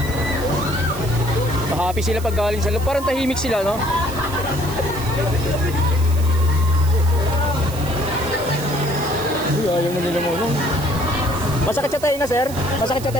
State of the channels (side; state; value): right; noise; hiss, 14 dB below the sound